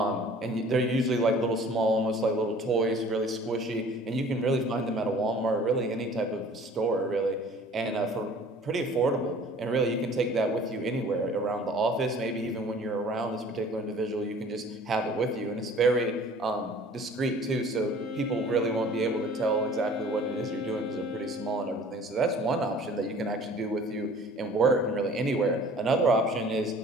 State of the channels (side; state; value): both; normal; correlation 0.49